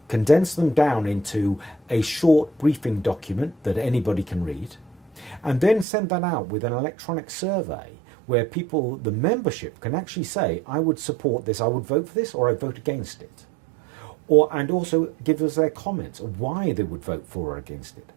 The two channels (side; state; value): left; drops out; at 5.9 s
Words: condense them down into a short briefing document that anybody can read, and then send that out with an electronic survey where people, the membership, can actually say, I would support this, I would vote for this, or I vote against it. And also give us their comments of why they would vote for or against it.